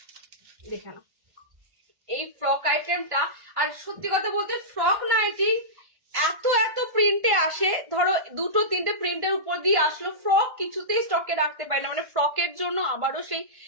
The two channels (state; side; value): late; left; 1.5 ms